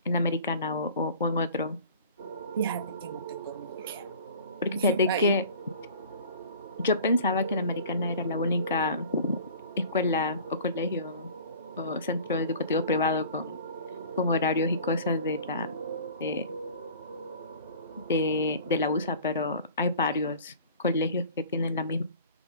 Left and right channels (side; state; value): both; inverted; correlation -0.44